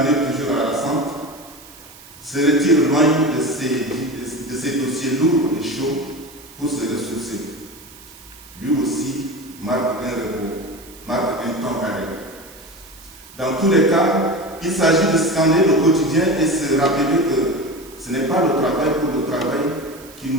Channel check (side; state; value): right; noise; hiss, 21 dB below the sound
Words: toujours harassante, se retire loin de ces dossiers lourds et chauds pour se ressourcer. Lui aussi marque un repos, marque un temps arrêt. Dans tous les cas, il s'agit de scanner le quotidien et se rappeler que ce n'est pas le travail pour le travail qui